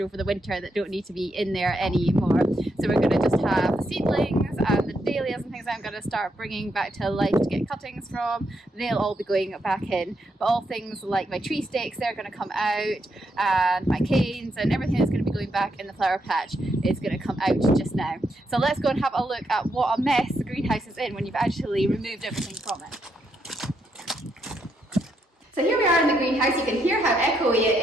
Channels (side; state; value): both; normal; correlation 0.79